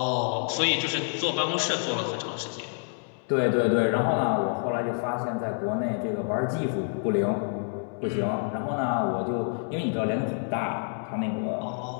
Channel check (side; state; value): right; silent; 60 dB below the other